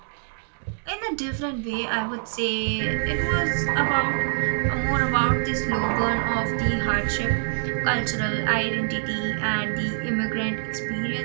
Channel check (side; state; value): left; silent; digital silence